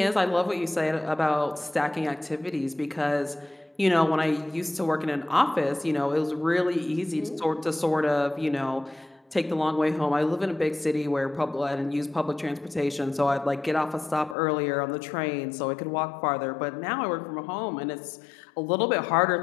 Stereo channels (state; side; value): drops out; right; at 14.4 s